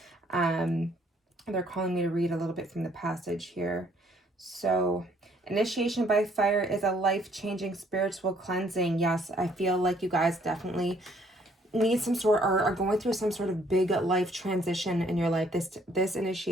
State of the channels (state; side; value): normal; both; correlation 0.64